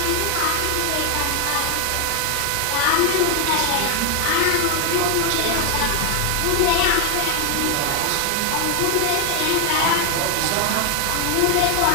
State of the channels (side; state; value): both; different; correlation 0.01